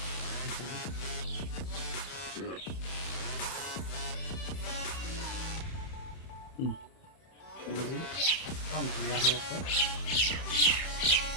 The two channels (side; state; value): right; late; 31 ms